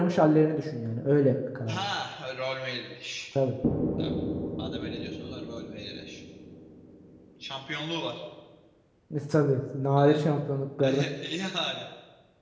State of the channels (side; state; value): both; identical; correlation 1.00